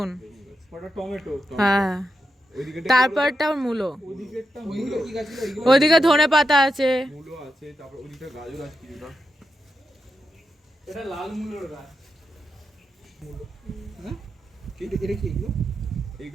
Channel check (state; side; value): normal; both; correlation 0.86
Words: ওটা টমেটো। হ্যাঁ তারপরটা মূলো, ওইদিকেরটা মূলো। কি গাছ ছিল? ওইদিকে ধনে পাতা আছে। মূলো আছে, তারপর ওদিকটা গাজর আছে কিছুটা। এটা লাল মূলোর গাছ। হ্যাঁ এটা কি এগুলো?